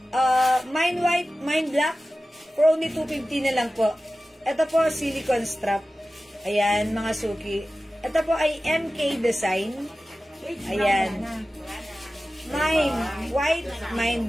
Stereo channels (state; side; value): normal; both; correlation 0.95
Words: mine white, mine black, for only 250 na lang po. Ito po, silicone strap. Ayan, mga suki. Ito po ay MK design. Ayan. Mine white, mine